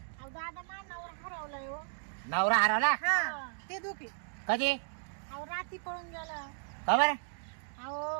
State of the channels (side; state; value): left; silent; digital silence